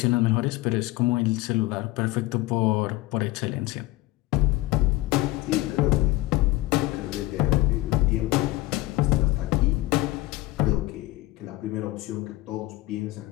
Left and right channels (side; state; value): right; quieter; 19.2 dB